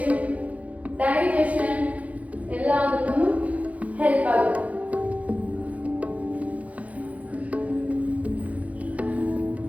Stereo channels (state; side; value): late; left; 0.068 ms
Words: ಡೈಜೆಷನ್ ಎಲ್ಲದಕ್ಕೂ ಹೆಲ್ಪ್ ಆಗುತ್ತೆ.